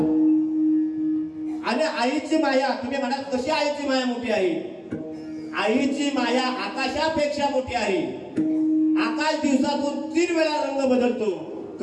आणि आईची माया, तुम्ही म्हणाल कशी आईची माया मोठी आहे, आईची माया आकाशापेक्षा मोठी आहे. आकाश दिवसातून 3 वेळा रंग बदलतो,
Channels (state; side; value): identical; both; correlation 1.00